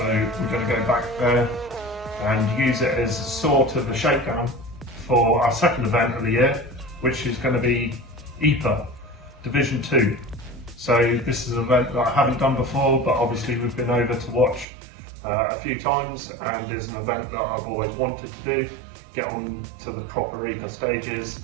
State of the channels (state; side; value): drops out; left; at 14.7 s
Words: we're going to go back there and use it as sort of a shakedown for our second event of the year, which is going to be EPA Division 2. So this is an event that I haven't done before, but obviously we've been over to watch a few times, and is an event that I've always wanted to do, get on to the proper EPA stages.